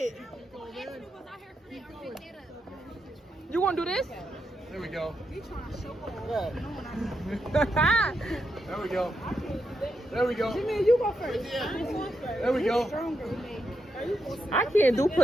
You gonna do this? There we go. There There we go. There we go. Jimmy, you go first. There we go. I can't do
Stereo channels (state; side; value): normal; both; correlation 0.83